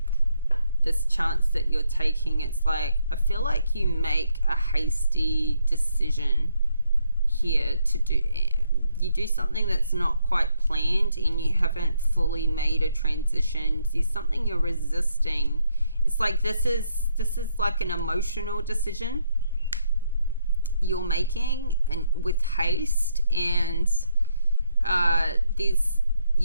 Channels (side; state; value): both; inverted; correlation -0.74